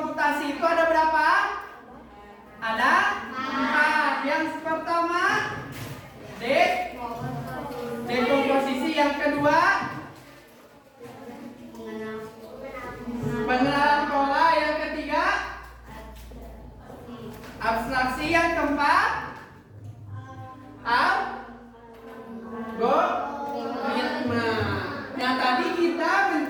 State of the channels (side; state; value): both; identical; correlation 1.00